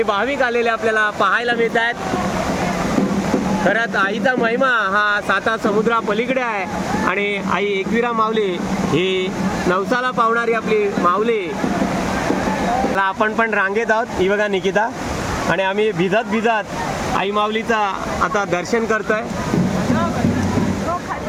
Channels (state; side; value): identical; both; correlation 1.00